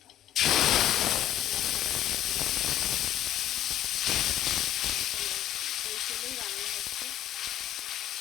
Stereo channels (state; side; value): quieter; right; 12.4 dB